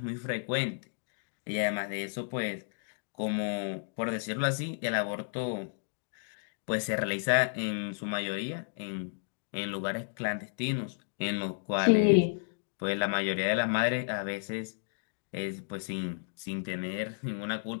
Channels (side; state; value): right; silent; digital silence